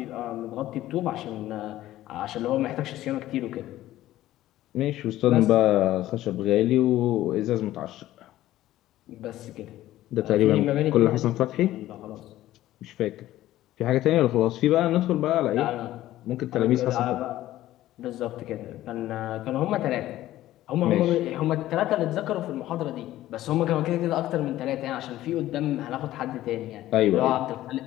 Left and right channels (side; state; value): right; quieter; 14.6 dB